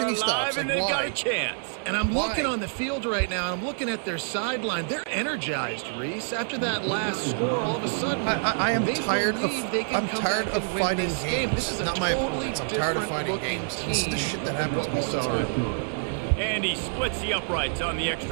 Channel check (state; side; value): silent; left; digital silence